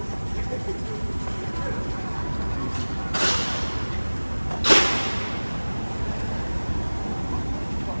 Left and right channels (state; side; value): inverted; both; correlation -1.00